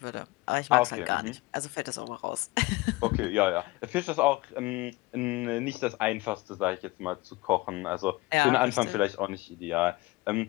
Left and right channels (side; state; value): right; quieter; 21.8 dB